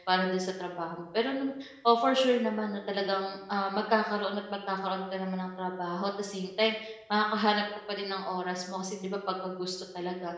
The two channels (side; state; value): both; identical; correlation 1.00